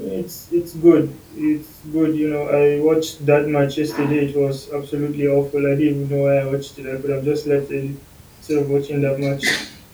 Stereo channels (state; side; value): identical; both; correlation 1.00